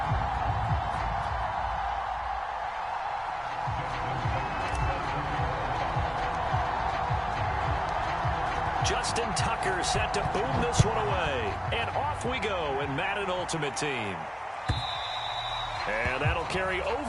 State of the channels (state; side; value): identical; both; correlation 1.00